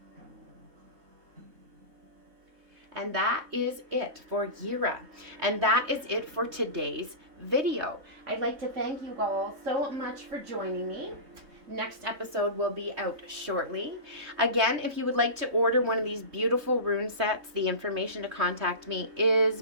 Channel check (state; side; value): late; left; 3.6 ms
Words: And that is it for Jera. And that is it for today's video. I'd like to thank you all so much for joining me. Next episode will be out shortly. Again, if you would like to order one of these beautiful rune sets, the information to contact me is